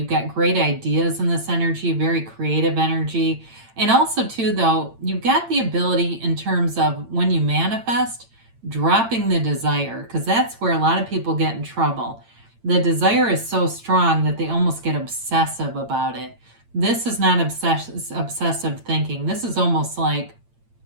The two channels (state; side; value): late; left; 8.8 ms